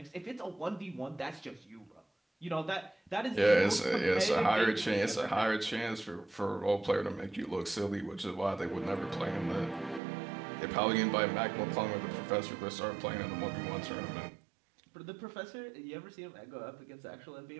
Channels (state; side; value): drops out; left; at 10.0 s